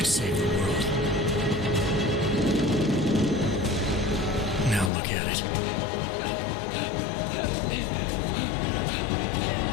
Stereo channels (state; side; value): drops out; right; at 4.9 s